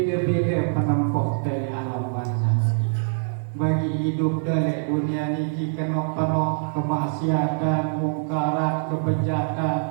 penempuh dari alam barzah. Bagi hidup dari dunia ini kena penuh kemaksiatan, mungkarat, kebejatan.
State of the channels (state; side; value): silent; left; digital silence